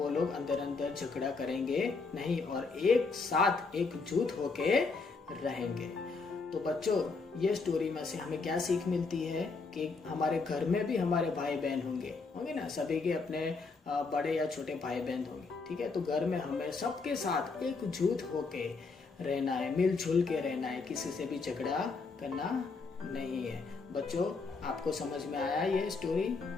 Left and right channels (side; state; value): right; quieter; 4.3 dB